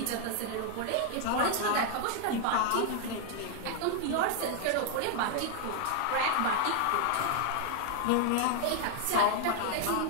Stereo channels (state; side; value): different; both; correlation 0.00